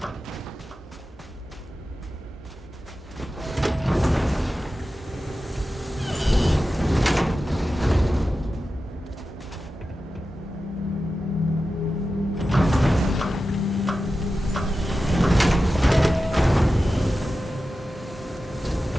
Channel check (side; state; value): both; normal; correlation 0.92